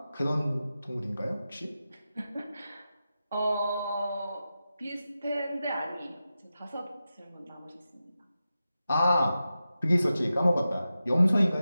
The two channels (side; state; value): both; inverted; correlation -0.92